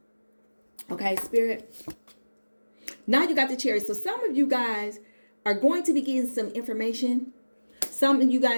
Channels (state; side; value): inverted; both; correlation -1.00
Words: Okay, Spirit. Now you got the Chariot. So some of you guys are going to be getting some information. Some of you